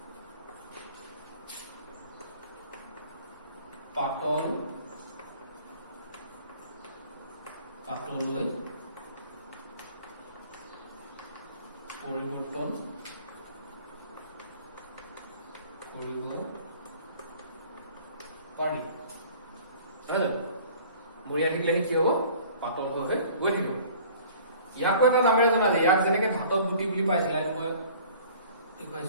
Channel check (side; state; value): both; inverted; correlation -0.49